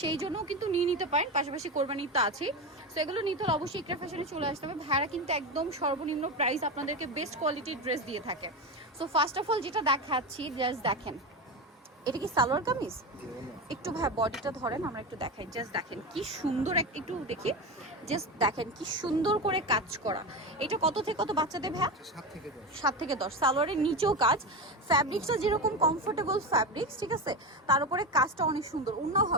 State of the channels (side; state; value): both; normal; correlation 0.19